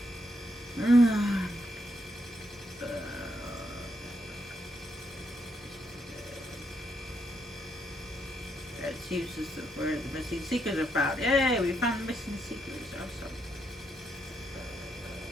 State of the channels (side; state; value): both; normal; correlation 0.78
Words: It uses where the missing seekers are found. Yay, we found the missing seekers. Awesome.